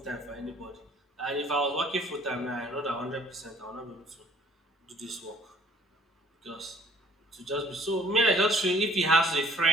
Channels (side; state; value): both; normal; correlation 0.56